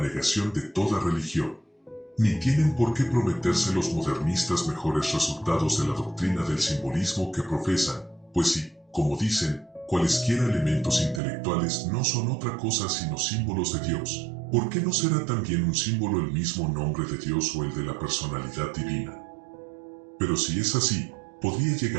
de toda religión. Ni tienen por qué prometerse los modernistas mejores resultados de la doctrina del simbolismo que profesan, pues si, como dicen, cualesquiera elementos intelectuales no son otra cosa sino símbolos de Dios, ¿por qué no será también un símbolo el mismo nombre de Dios o el de la personalidad divina? Pero si es así, podría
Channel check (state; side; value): drops out; left; at 11.2 s